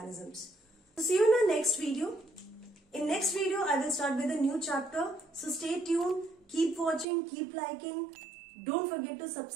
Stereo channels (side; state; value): left; drops out; at 7.1 s